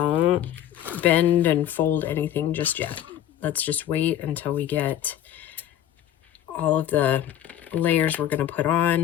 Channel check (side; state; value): right; quieter; 11.4 dB